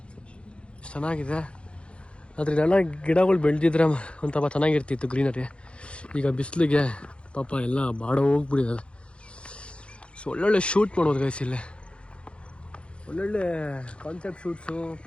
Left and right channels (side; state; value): right; late; 0.058 ms